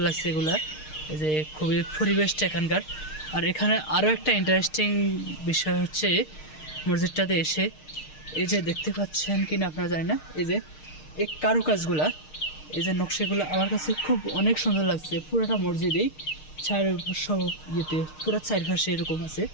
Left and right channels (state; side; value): late; right; 6.5 ms